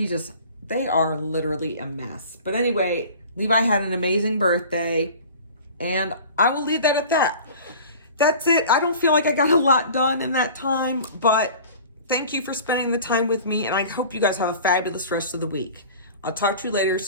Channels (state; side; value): inverted; both; correlation -0.42